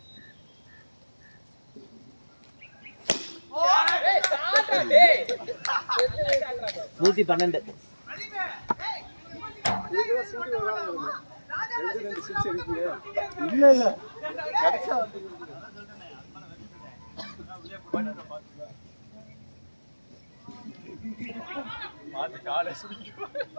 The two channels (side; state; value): both; inverted; correlation -1.00